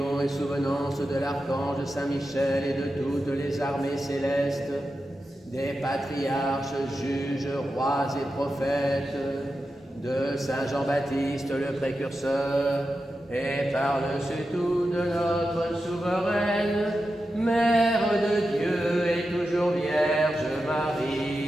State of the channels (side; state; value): both; normal; correlation 0.90